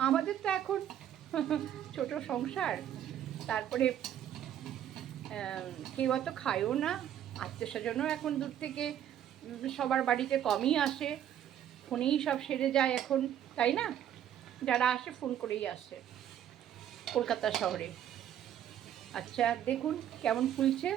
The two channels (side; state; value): left; quieter; 10.5 dB